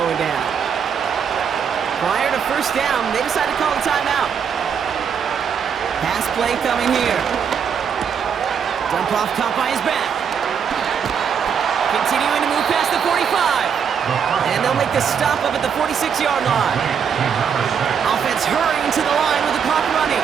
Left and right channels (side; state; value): left; quieter; 7.2 dB